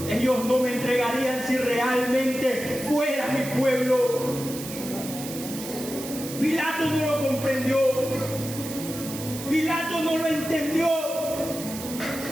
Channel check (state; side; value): noise; right; hiss, 10 dB below the sound